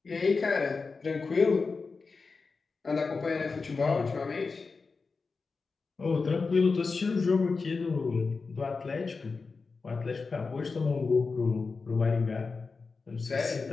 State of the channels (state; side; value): quieter; right; 4.4 dB